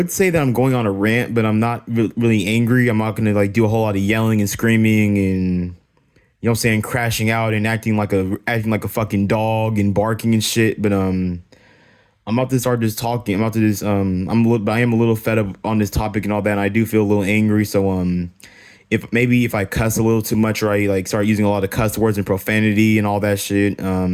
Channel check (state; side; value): identical; both; correlation 1.00